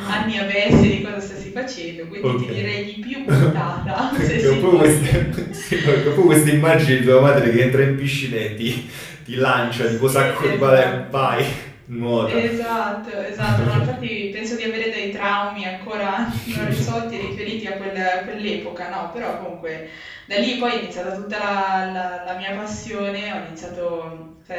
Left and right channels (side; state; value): both; identical; correlation 1.00